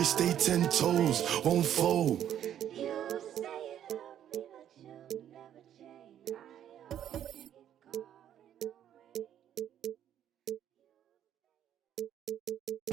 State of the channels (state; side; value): quieter; left; 10.4 dB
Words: stay 10 toes, won't fold.